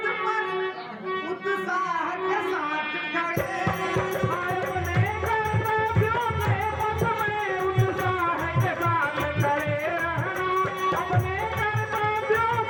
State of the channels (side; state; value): both; identical; correlation 1.00